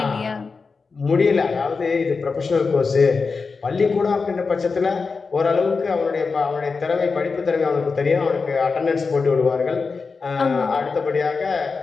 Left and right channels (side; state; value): right; quieter; 4.6 dB